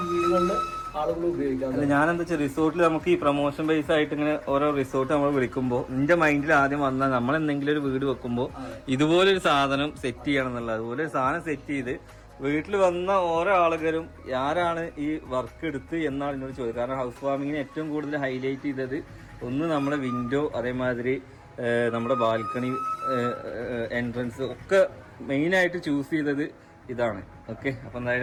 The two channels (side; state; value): both; identical; correlation 1.00